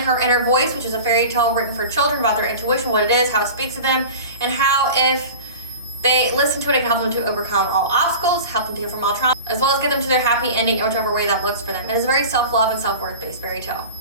Her Inner Voice, which is a fairy tale written for children about their intuition, what it is, how it speaks to them, and how if they listen to it, it can help them to overcome all obstacles, help them to heal from all trauma, as well as get them to their happy ending in whichever way that looks for them. It is a very self-love and self-worth based fairy tale.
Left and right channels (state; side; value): inverted; both; correlation -0.35